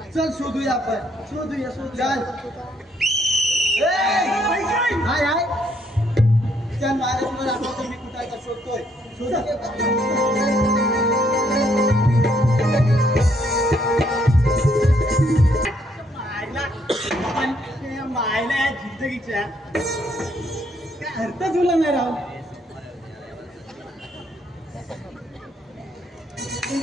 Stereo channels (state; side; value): normal; both; correlation 0.70